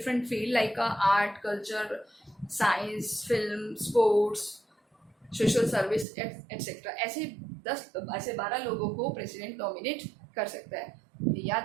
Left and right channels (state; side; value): drops out; left; at 6.1 s